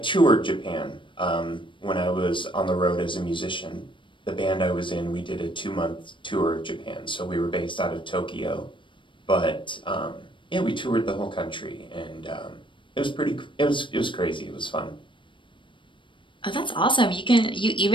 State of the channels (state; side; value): late; right; 0.24 ms